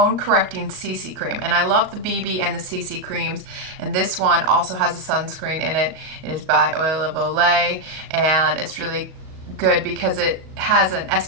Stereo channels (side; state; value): left; late; 38 ms